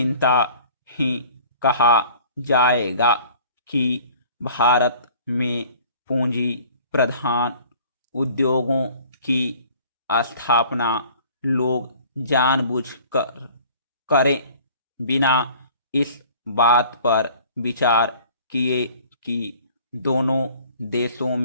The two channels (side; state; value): both; inverted; correlation -0.50